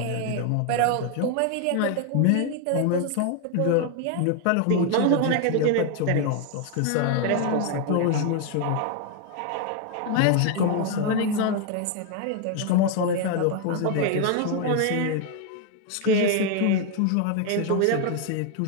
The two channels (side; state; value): both; different; correlation 0.01